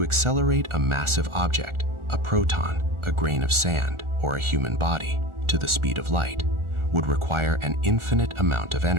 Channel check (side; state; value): left; late; 1.4 ms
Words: accelerate a massive object, a proton, a grain of sand, or a human body, to the speed of light, would require an infinite amount of